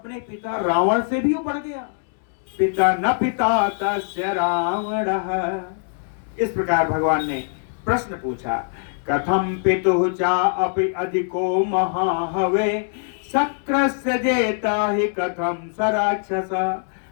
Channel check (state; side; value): silent; right; digital silence